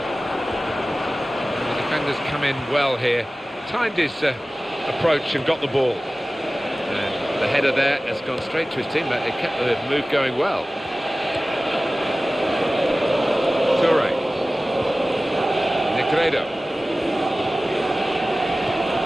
The defenders come in well here. Timed his approach and got the ball. And the header there has gone straight to his teammate. They kept the move going well. Toure. Negredo.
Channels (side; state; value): both; normal; correlation 0.97